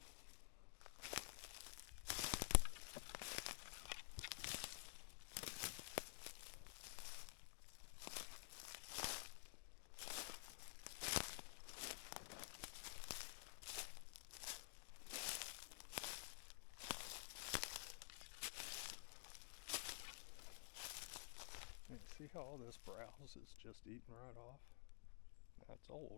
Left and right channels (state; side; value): silent; right; digital silence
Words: And see how all this browse is just eating right off? That's